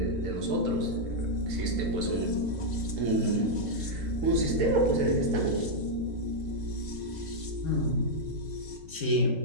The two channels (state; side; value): late; left; 3.8 ms